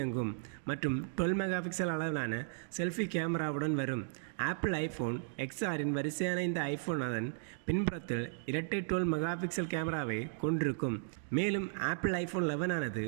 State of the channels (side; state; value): left; silent; digital silence